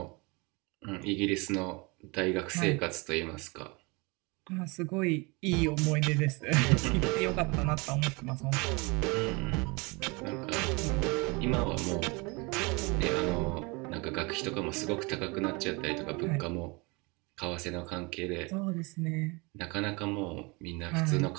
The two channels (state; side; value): quieter; left; 27.6 dB